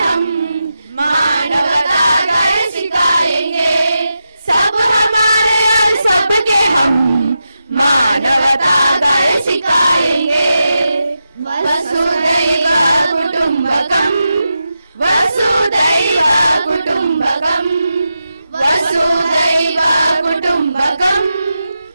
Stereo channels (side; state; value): both; inverted; correlation -0.89